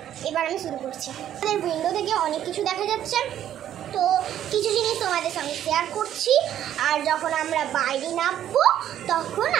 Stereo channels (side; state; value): left; quieter; 11.1 dB